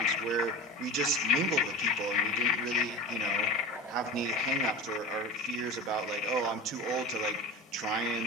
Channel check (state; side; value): normal; both; correlation 0.31